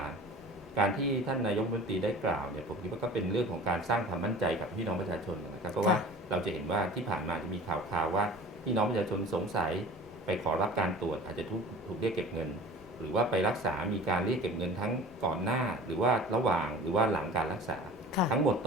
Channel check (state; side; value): normal; both; correlation 0.40